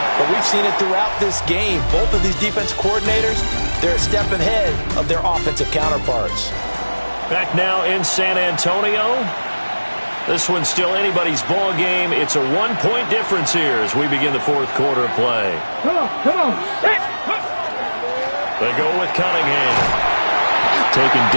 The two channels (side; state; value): both; inverted; correlation -1.00